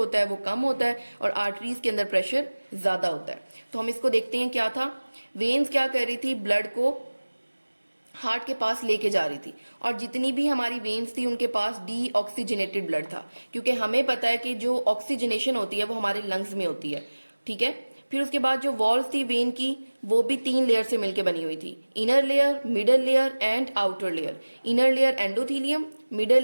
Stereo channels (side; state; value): both; inverted; correlation -1.00